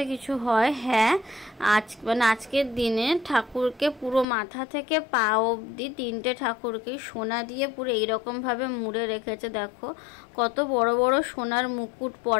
কিছু হয়। হ্যাঁ, মানে আজকের দিনে ঠাকুরকে পুরো মাথা থেকে পা অবধি 3টে ঠাকুরকে সোনা দিয়ে পুরো এইরকম ভাবে মুড়ে রেখেছে। দেখো কত বড় বড় সোনার মুকুট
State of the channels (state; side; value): drops out; right; at 4.2 s